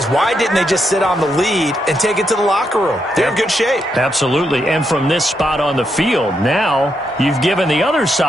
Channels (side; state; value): both; normal; correlation 0.81